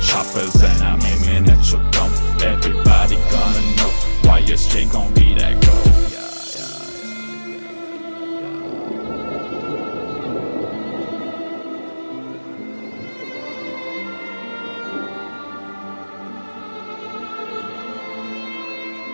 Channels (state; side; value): inverted; both; correlation -1.00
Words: choppers and I'm aiming at your dome. Everybody gonna know why YSJ gon' be that gold.